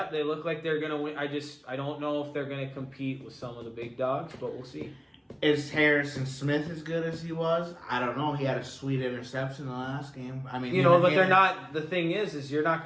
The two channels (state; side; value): identical; both; correlation 1.00